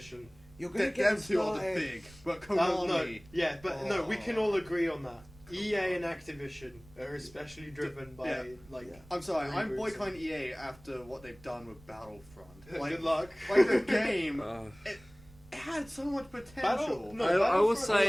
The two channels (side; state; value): right; noise; rumble, 23 dB below the sound